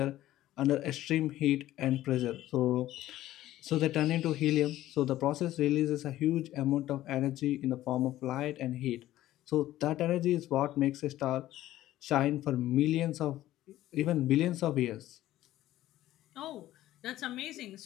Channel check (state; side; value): quieter; right; 14.5 dB